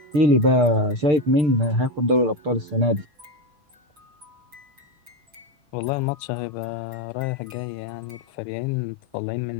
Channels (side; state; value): left; late; 6.7 ms